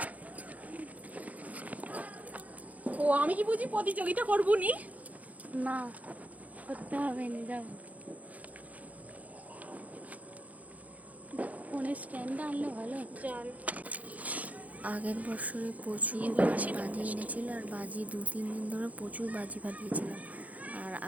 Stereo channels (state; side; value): late; left; 0.073 ms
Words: ও আমি কি বুঝি প্রতিযোগিতা করবো নি? না, করতে হবে না, যাও। ফোনের স্ট্যান্ডটা আনলে ভালো। চল। আগের বছরে প্রচুর বাজি এনেছিল, আর বাজি 2-3 দিন ধরে প্রচুর বাজি ফাটিয়েছিলাম। আর